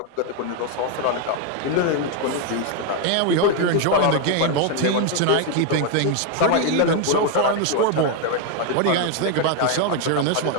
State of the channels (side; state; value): both; different; correlation 0.01